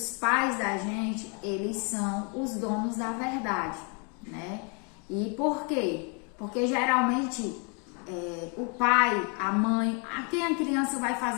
pais da gente, eles são os donos da verdade, né? E por quê? Porque geralmente o pai, a mãe, a quem a criança vai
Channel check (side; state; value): right; quieter; 35.8 dB